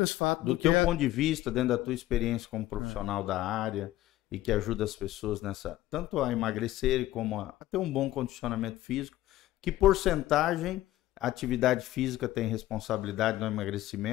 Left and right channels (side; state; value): right; quieter; 15.5 dB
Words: fato Do teu ponto de vista, dentro da tua experiência como profissional da área e que ajuda as pessoas nessa, tanto a emagrecerem como a ter um bom condicionamento físico, que porcentagem a atividade física tem responsabilidade no